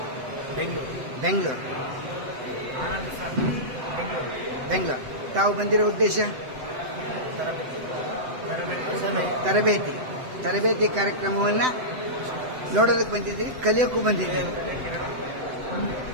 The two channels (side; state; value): left; late; 7.9 ms